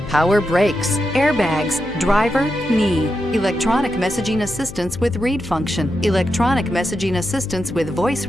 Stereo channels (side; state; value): left; noise; hum, 13 dB below the sound